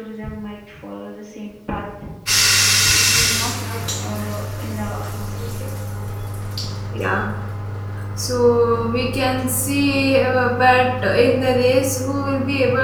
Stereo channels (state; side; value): identical; both; correlation 1.00